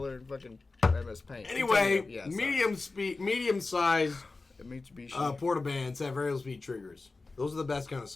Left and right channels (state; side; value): quieter; right; 3.6 dB